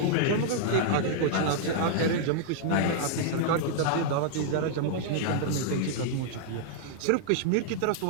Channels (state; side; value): different; both; correlation -0.01